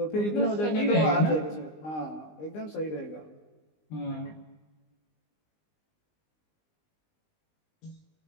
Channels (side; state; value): right; late; 19 ms